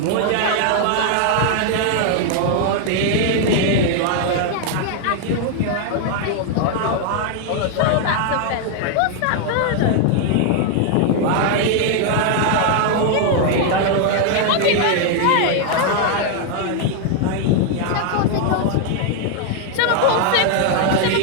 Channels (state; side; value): different; both; correlation 0.00